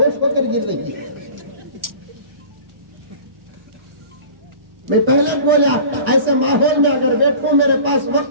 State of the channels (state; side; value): late; left; 1.1 ms